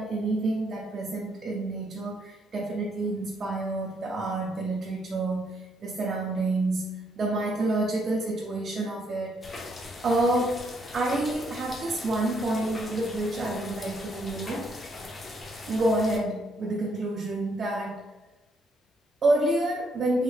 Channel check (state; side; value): normal; both; correlation 0.73